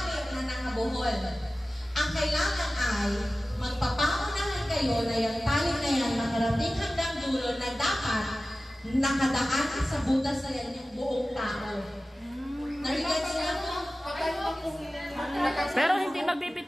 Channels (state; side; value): normal; both; correlation 0.96